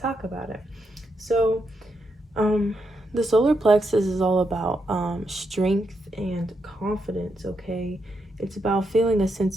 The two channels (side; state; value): both; normal; correlation 0.81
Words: about it. So the solar plexus is all about strength and confidence, okay? It's about feeling a